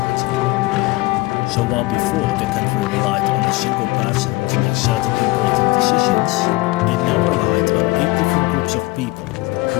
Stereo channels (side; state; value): right; quieter; 21.2 dB